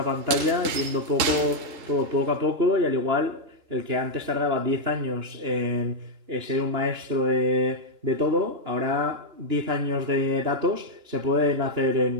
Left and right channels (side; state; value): left; late; 2.9 ms